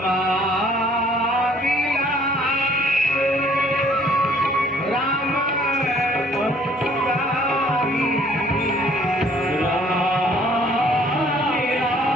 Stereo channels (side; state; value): both; normal; correlation 0.58